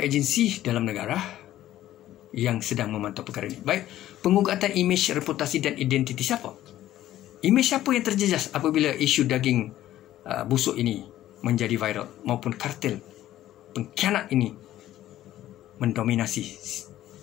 agensi dalam negara yang sedang memantau perkara ini. Baik, pengugatan imej, reputasi dan identiti siapa? Imej siapa yang terjejas apabila isu daging busuk ini menjadi viral, maupun kartel pengkhianat ini mendominasi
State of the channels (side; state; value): right; quieter; 13.5 dB